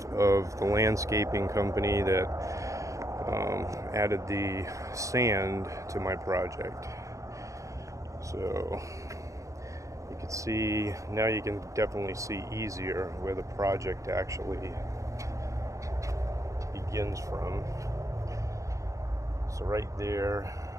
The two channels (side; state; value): left; late; 0.15 ms